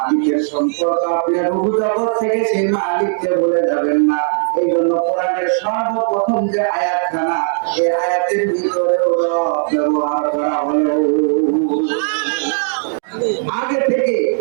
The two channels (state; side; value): silent; left; digital silence